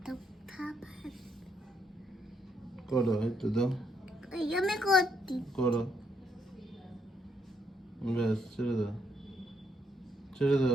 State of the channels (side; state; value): both; normal; correlation 0.74